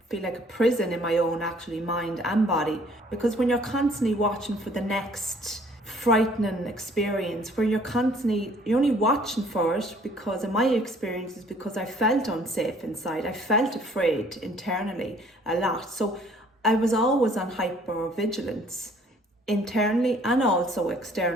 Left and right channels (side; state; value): both; normal; correlation 0.58